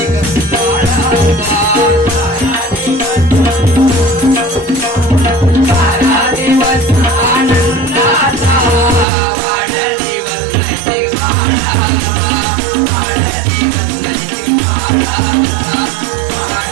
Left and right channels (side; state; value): left; drops out; at 9.1 s